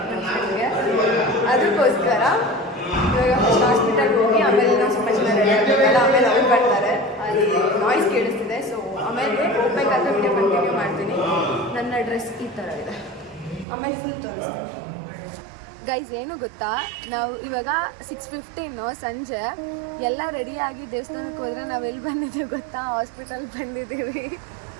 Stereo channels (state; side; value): drops out; left; at 13.7 s